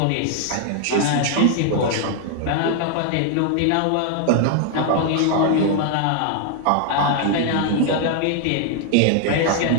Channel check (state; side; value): different; both; correlation 0.00